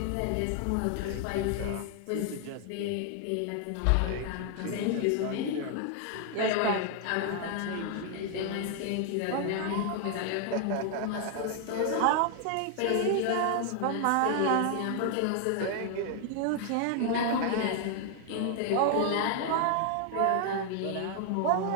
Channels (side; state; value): both; different; correlation 0.00